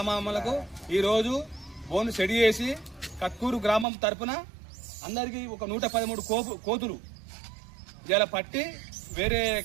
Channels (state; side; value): drops out; left; at 3.9 s